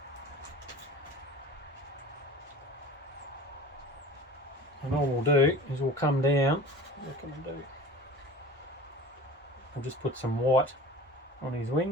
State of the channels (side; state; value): both; normal; correlation 0.39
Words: And all we'll do is we'll come down. What can I do? I'll just put some white on his